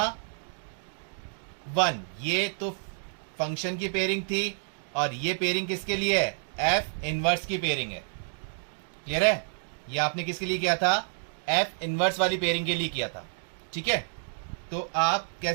ये तो फंक्शन की पेयरिंग थी और ये पेयरिंग किसके लिए है, f इनवर्स की पेयरिंग है। क्लियर है? ये आपने किसके लिए किया था, f इनवर्स वाली पेयरिंग के लिए किया था। ठीक है, तो आप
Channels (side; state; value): left; silent; digital silence